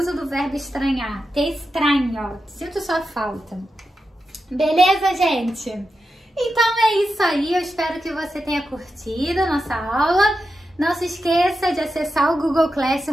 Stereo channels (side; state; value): both; normal; correlation 0.89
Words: do verbo estranhar. Te estranho. Sinto sua falta. Beleza, gente? Então, é isso aí. Eu espero que você tenha curtido a nossa aula. Não se esqueça de acessar o Google